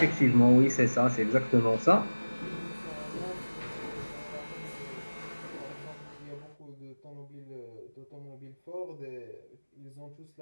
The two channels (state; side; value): inverted; both; correlation -1.00